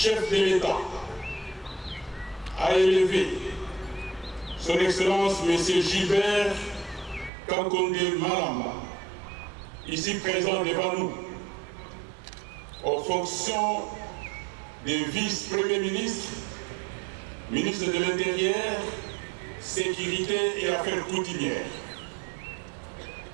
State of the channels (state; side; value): drops out; left; at 7.3 s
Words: de l'État, a élevé son Excellence M. Gilbert Kankonde Malamba, ici présent devant nous, aux fonctions de vice-premier ministre, ministre de l'Intérieur, Sécurité et Affaires coutumières.